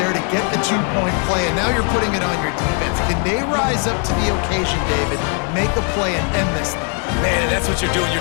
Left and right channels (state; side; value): quieter; right; 40.0 dB